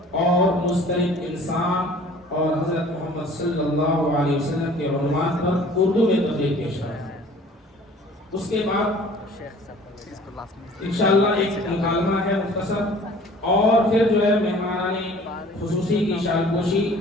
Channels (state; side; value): normal; both; correlation 0.50